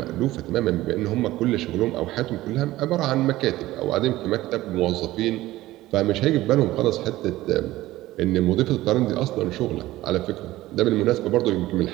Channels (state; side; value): quieter; left; 16.6 dB